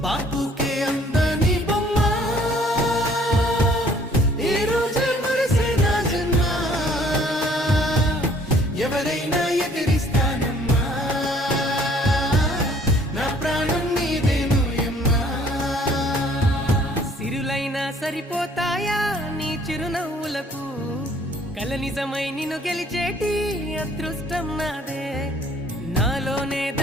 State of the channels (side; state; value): both; normal; correlation 0.58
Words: బాపుకే అందని బొమ్మ ఈ రోజే మురిసే నా జన్మ ఎవరైనా ఎదిరిస్తానమ్మా నా ప్రాణం నీదేను యమ్మా సిరులైనా సరిపోతాయా నీ చిరునవ్వులకు కల నిజమై నిన్ను గెలిచేటి అదృష్టం నాదే నాలోనే